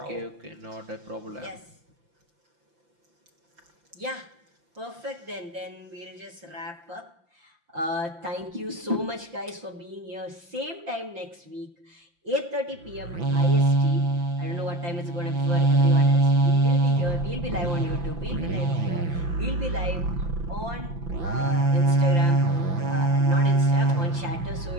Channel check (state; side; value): late; left; 5.7 ms